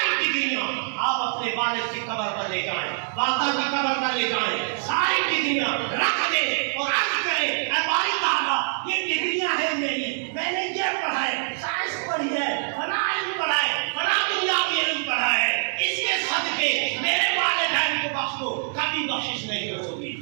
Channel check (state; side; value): silent; left; 62 dB below the other